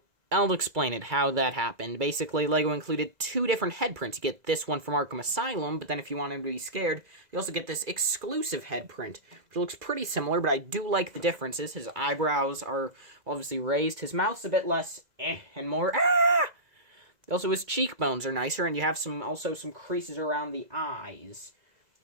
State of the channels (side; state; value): left; late; 2.0 ms